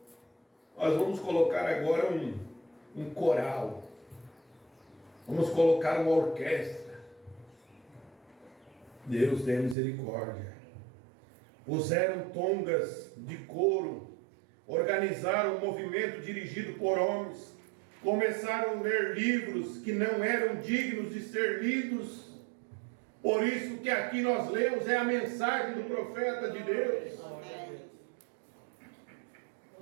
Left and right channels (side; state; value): left; drops out; at 9.8 s